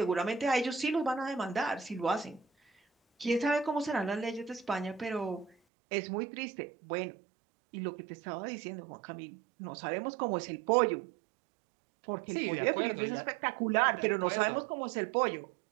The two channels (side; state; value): left; drops out; at 5.6 s